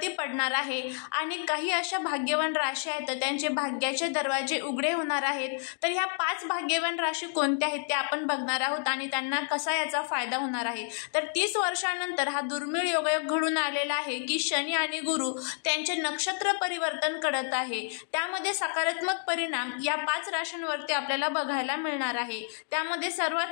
पडणार आहे आणि काही अशा भाग्यवान राशी आहेत तर त्यांचे भाग्याचे दरवाजे उघडे होणार आहेत। तर ह्या 5 भाग्यवान राशी कोणत्या आहेत ते आपण बघणार आहोत आणि त्यांना कसा याचा फायदा होणार आहे। तर 30 वर्षानंतर हा दुर्मिळ योगायोग घडून आलेला आहे की शनी आणि गुरु त्यांचे नक्षत्र परिवर्तन करत आहे। त्यामध्ये सकारात्मक परिणाम या 5 राशींवरती आपल्याला बघायला मिळणार आहे। त्यामध्ये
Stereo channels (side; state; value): right; silent; 57 dB below the other